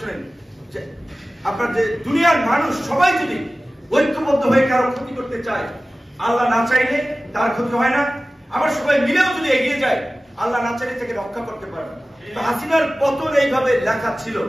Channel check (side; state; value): both; normal; correlation 0.96